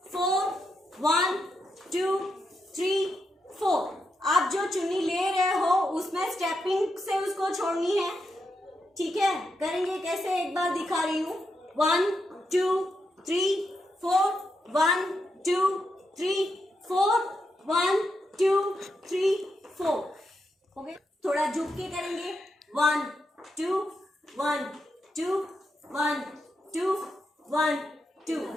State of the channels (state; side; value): normal; both; correlation 0.84